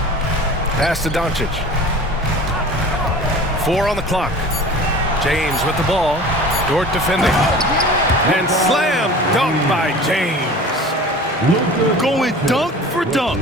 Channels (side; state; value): both; normal; correlation 0.40